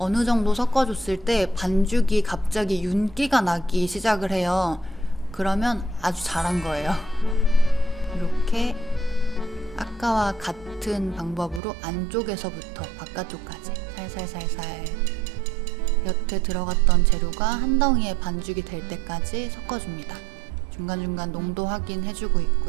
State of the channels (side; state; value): left; drops out; at 11.6 s